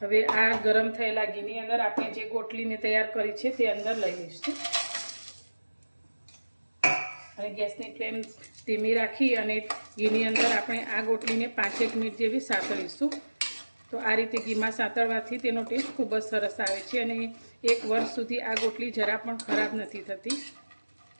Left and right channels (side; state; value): both; inverted; correlation -1.00